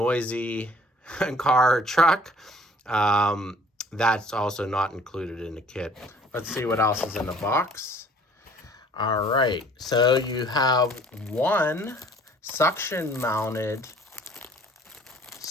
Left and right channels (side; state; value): both; normal; correlation 0.54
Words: car or truck, that's also not included in the kit. Let's see what else is in the box. All right, so you have one suction mounted